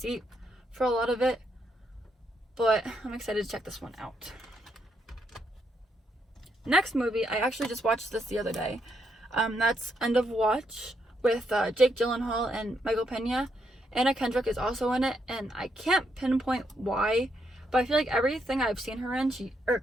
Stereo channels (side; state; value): both; normal; correlation 0.78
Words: for a lot of it, but I'm excited to check this one out. Next movie, I actually just watched this the other day. That's End of Watch with Jake Gyllenhaal and Michael Pena. Anna Kendrick is also in it, and I can't pinpoint why, but I feel like everything I've seen her in, she